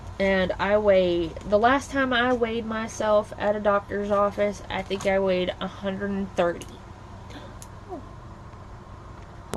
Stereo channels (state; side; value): identical; both; correlation 1.00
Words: And the last time I weighed myself at a doctor's office, I think I weighed 130.